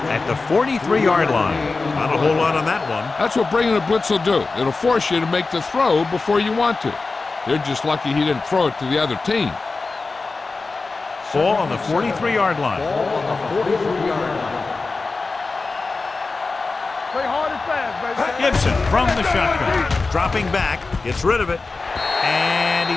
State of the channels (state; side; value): quieter; right; 3.9 dB